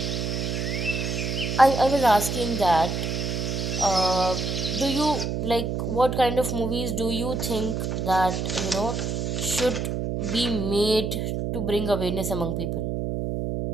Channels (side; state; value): right; noise; hum, 1 dB below the sound